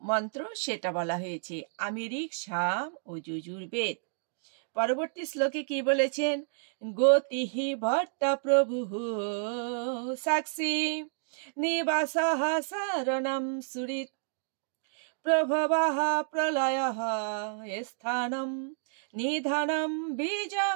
মন্ত্র, সেটা বলা হয়েছে। আমি ঋক, সাম ও যজুর্বেদ। পরবর্তী শ্লোকে কি বলেছেন, গতিহি ভট্টা প্রভু সাক্ষী নিবাসঃ শরণম সুরিত প্রভবঃ প্রলয়ঃ স্থানম নিধানম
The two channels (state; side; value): silent; left; digital silence